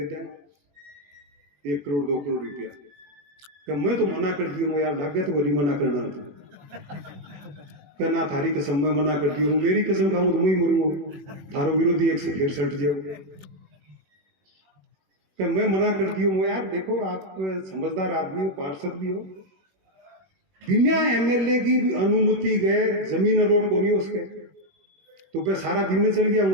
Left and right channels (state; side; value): late; left; 21 ms